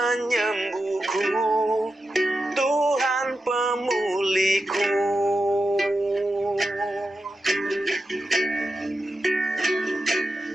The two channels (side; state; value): both; normal; correlation 0.89